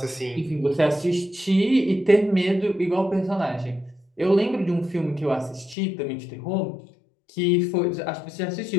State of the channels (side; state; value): right; drops out; at 5.8 s